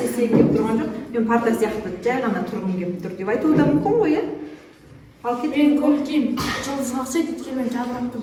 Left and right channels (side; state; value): both; identical; correlation 1.00